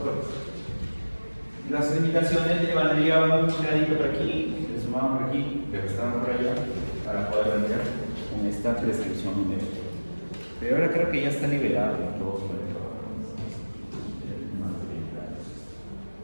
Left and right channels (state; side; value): inverted; both; correlation -1.00